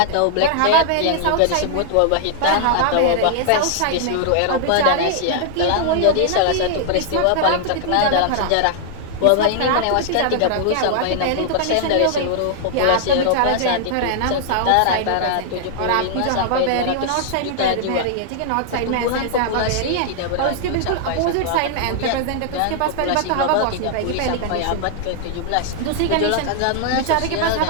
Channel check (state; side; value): different; both; correlation -0.01